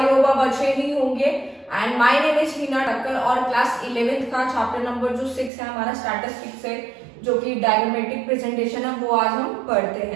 होप आप अच्छे ही होंगे। एंड माय नेम इज हीना ठक्कर और क्लास 11th का चैप्टर नंबर जो 6 है हमारा स्टैटिस्टिक्स है, जो कि डायग्रामेटिक प्रेजेंटेशन है, वो आज हम पढ़ते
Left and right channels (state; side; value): drops out; left; at 5.5 s